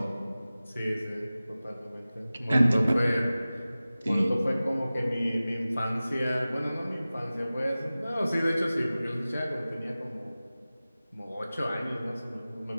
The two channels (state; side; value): inverted; both; correlation -0.97